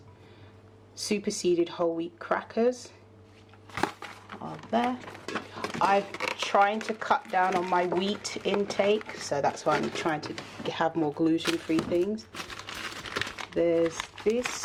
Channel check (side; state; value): both; identical; correlation 1.00